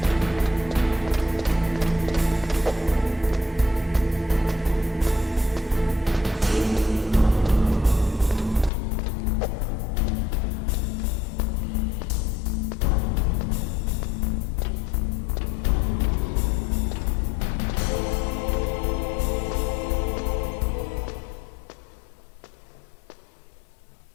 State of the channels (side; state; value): right; drops out; at 8.7 s